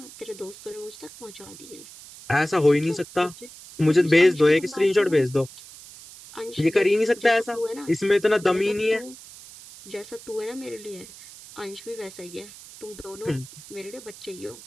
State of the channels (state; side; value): noise; right; hiss, 18 dB below the sound